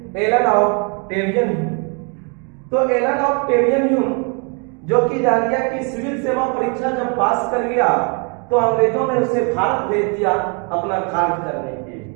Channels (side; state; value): left; quieter; 36.1 dB